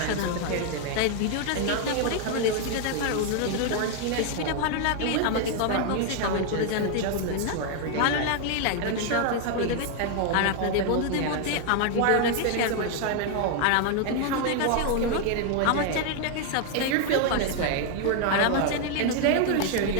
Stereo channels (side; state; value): both; different; correlation 0.00